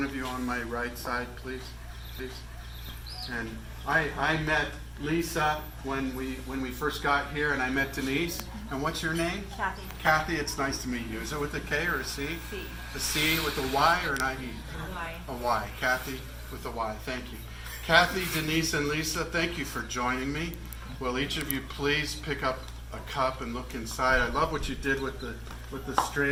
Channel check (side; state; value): both; identical; correlation 1.00